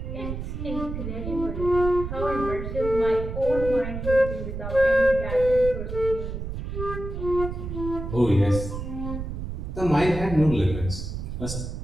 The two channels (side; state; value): right; noise; rumble, 6 dB below the sound